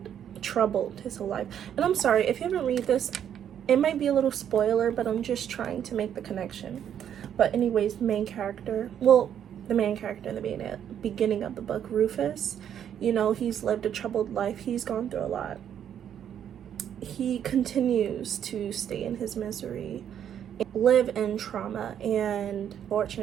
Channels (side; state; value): left; quieter; 9.4 dB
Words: his whole life. And I'm sorry, if you haven't read this, it might be a little spoiler, but I'm just trying to make the connection. But anyways, the main character in the beginning of the book, Rufus, you know, he's lived a troubled life. He's gone through a lot. He continues to stay in his misery, live in trauma, and